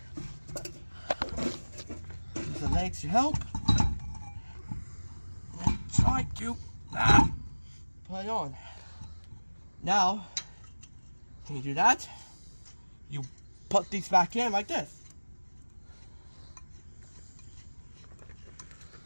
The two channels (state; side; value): inverted; both; correlation -1.00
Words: Use the legs to help. And try to put it on. Now, when you do that, you put these back in like this.